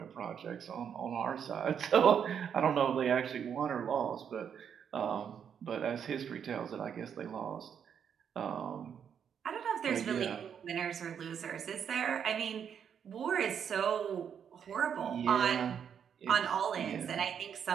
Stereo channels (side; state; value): left; quieter; 7.9 dB